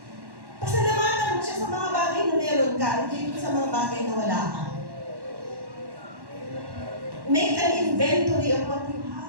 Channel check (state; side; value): late; left; 1.1 ms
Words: Pasalamatan mo siya sa mga bagay na meron ka, hindi sa mga bagay na wala ka. Make an inventory of what you